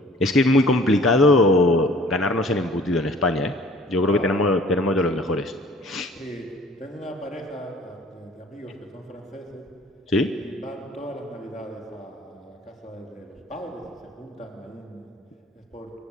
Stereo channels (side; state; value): both; normal; correlation 0.52